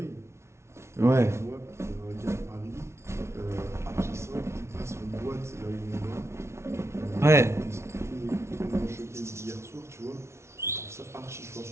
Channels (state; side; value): late; left; 0.13 ms